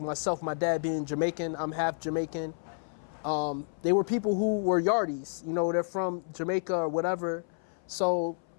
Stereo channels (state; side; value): silent; right; 57 dB below the other